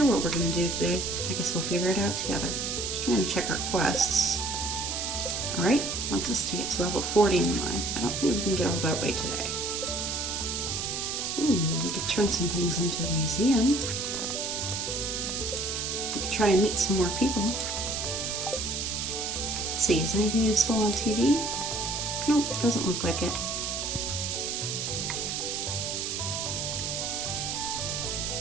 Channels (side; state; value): right; noise; hiss, 2 dB below the sound